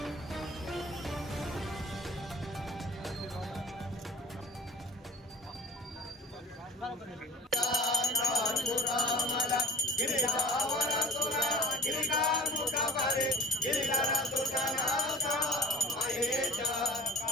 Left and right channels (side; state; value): both; normal; correlation 0.42